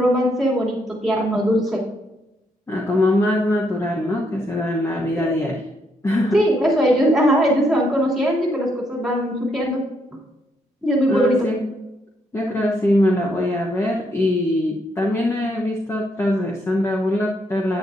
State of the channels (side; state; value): both; normal; correlation 0.75